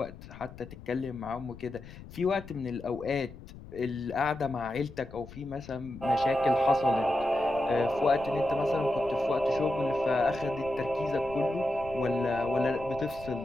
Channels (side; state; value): left; noise; rumble, 16 dB below the sound